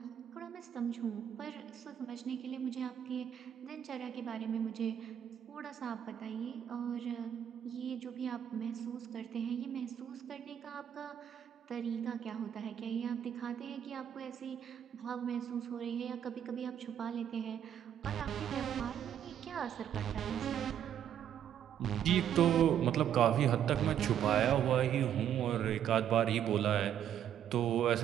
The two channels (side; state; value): left; quieter; 9.7 dB